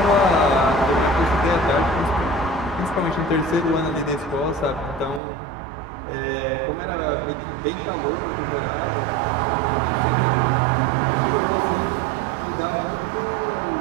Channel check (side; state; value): left; drops out; at 5.2 s